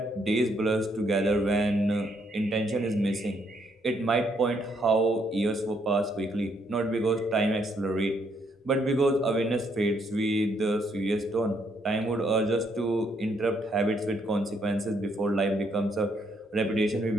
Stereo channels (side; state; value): both; normal; correlation 0.72